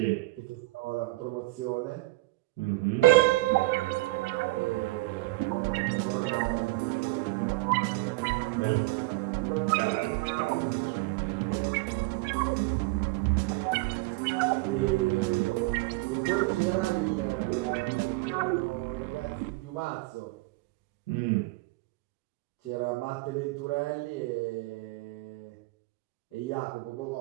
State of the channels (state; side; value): quieter; left; 22.1 dB